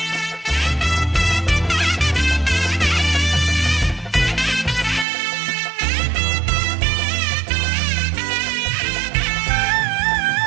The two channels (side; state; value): left; drops out; at 5.1 s